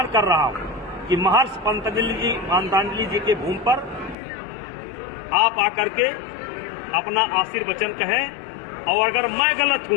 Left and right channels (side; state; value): right; drops out; at 4.2 s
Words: रहा हूं कि महर्षि पातंजलि जी के भूमि पर आप आकर के अपना आशीर्वचन कहें और अगर मैं गलत